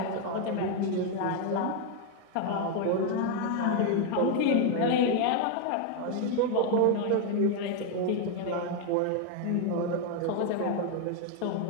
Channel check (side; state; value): both; different; correlation 0.01